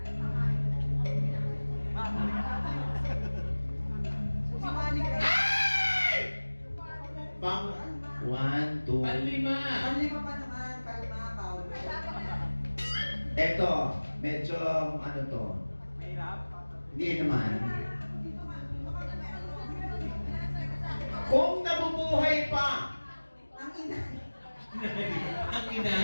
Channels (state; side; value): inverted; both; correlation -1.00